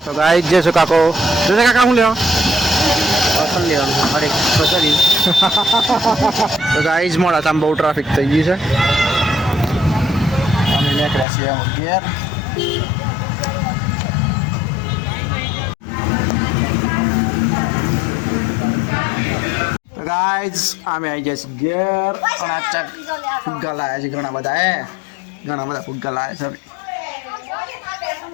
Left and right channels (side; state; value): right; drops out; at 11.2 s